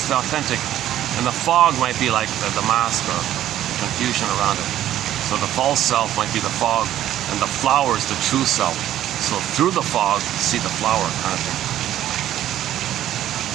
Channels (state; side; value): quieter; left; 12.4 dB